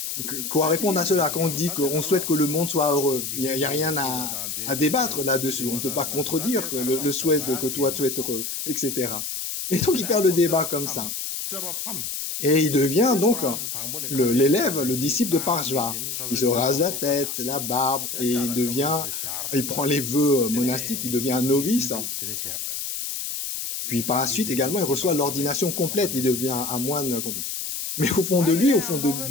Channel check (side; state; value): left; noise; hiss, 4 dB below the sound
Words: Quoi répondre à cela quand on dit qu'on souhaite que le monde soit heureux? Il n'y a rien à débattre là-dessus. On ne peut pas contredire que le souhait que toi tu es heureux, etc. Et donc il perd le débat comme ça. Et il devient donc l'élève, le disciple de Parshva. Il se rase la tête, la barbe, et il prend les vœux monastiques, il devient un novice. Puis par la suite également, il reçoit l'ordination complète, il devient un moine complet. Mais au fond de lui, au fond